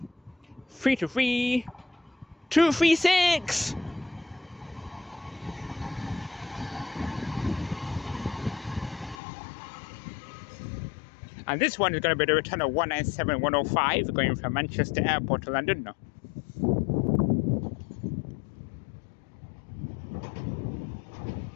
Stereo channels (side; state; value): right; drops out; at 9.2 s